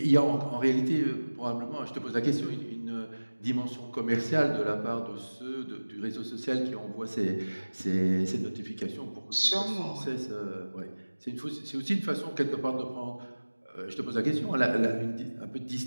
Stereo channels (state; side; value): inverted; both; correlation -1.00